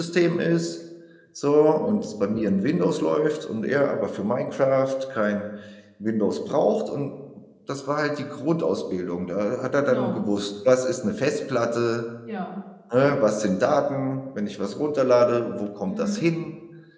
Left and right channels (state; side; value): identical; both; correlation 1.00